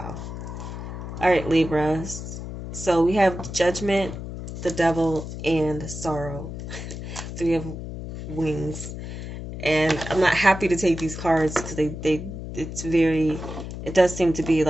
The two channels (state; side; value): noise; left; hum, 8 dB below the sound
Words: All right, Libras. So we have Judgment, the Devil, and Sorrow. 3 of wings. And I'm not happy to take these cards because it does seem to be